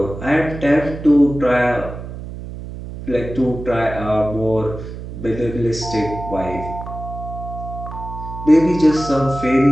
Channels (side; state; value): right; noise; hum, 10 dB below the sound